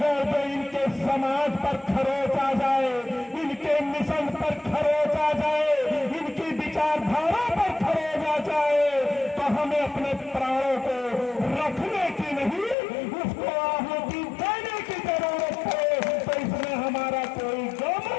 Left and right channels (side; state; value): right; drops out; at 12.8 s